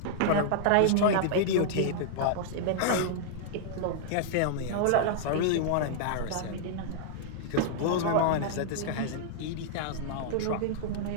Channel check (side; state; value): both; different; correlation -0.01